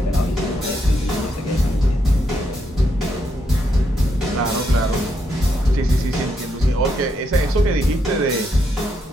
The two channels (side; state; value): both; normal; correlation 0.79